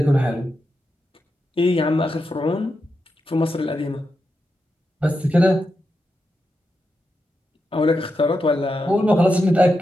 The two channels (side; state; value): both; normal; correlation 0.87